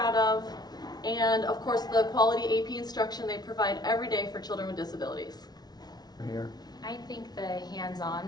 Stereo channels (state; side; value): late; right; 0.19 ms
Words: of, and of course the quality AP instruction they provide every day for children with disabilities. Here. I think the